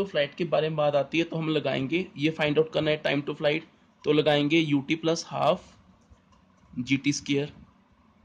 फ्लाइट के बारे में बात आती है तो हम लगाएंगे, ये फाइंड आउट करना है टाइम टू फ्लाइट, तो लगाएंगे UT plus half g t square.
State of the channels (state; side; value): identical; both; correlation 1.00